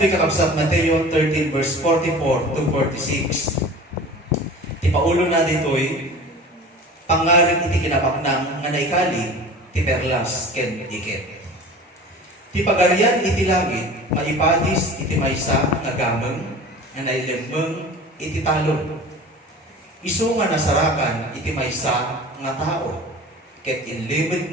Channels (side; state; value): both; normal; correlation 0.39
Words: yung kakabsat, Mateo 13 verse 44 to 46, ti paulo na dito'y, pangaring iti kinapaknang nga naikali, ti perlas ken iket. Ti pagarian iti langit, maipadis iti maysa nga gameng, nga nailemmeng iti talon. Isu nga nasarakan iti maysa nga tao, ket inlibid